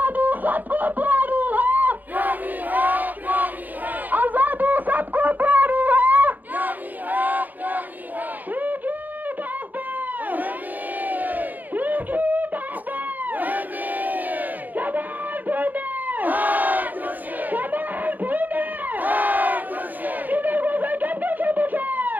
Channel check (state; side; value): late; left; 0.083 ms